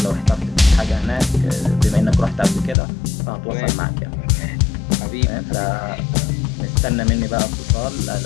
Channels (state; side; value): drops out; right; at 2.8 s